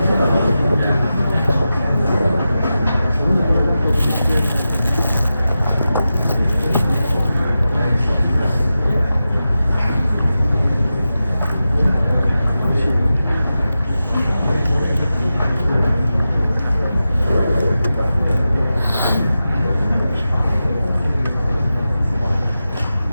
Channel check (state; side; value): inverted; both; correlation -0.92